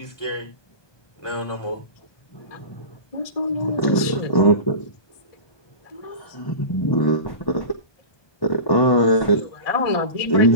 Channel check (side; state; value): right; late; 1.2 ms